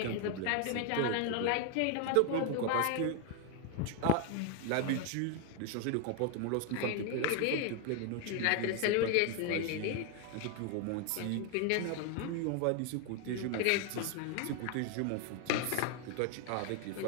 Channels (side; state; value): both; different; correlation 0.01